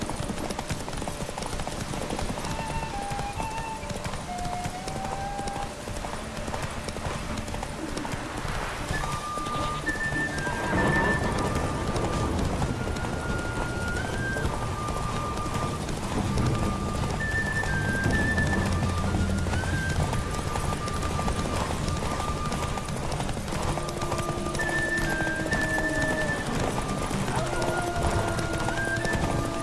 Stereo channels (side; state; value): both; identical; correlation 1.00